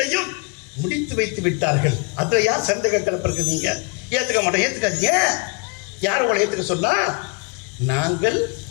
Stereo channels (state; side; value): quieter; right; 33.9 dB